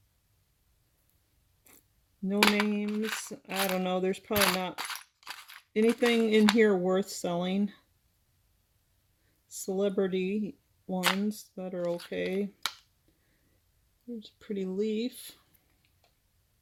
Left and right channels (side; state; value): both; identical; correlation 1.00